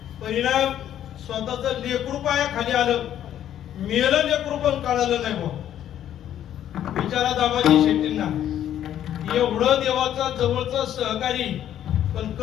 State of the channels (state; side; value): quieter; right; 10.9 dB